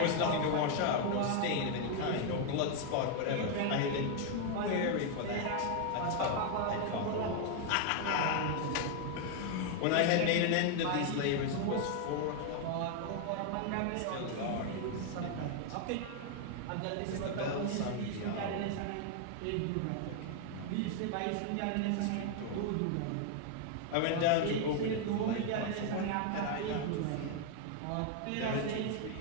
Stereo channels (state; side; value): different; both; correlation 0.00